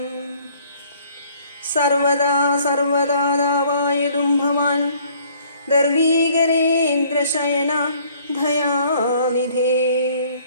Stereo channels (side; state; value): both; inverted; correlation -0.59